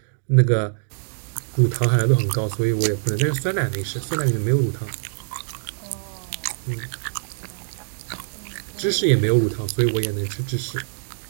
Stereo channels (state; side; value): silent; left; digital silence